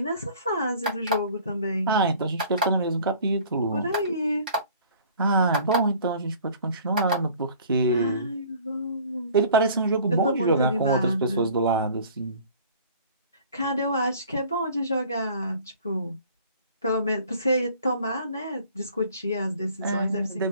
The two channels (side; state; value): both; inverted; correlation -0.50